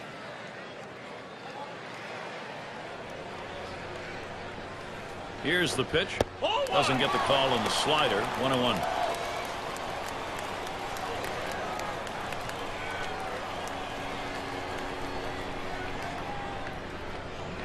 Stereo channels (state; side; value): identical; both; correlation 1.00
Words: Here's the pitch. Doesn't get the call on the slider. 1-1.